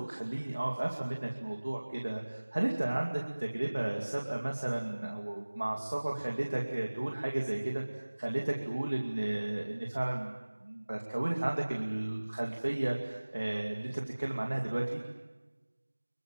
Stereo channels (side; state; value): both; inverted; correlation -1.00